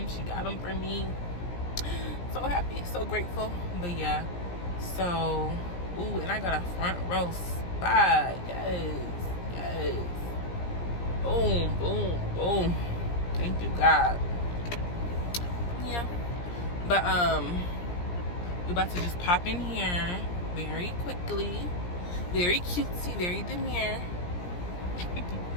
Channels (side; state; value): right; late; 17 ms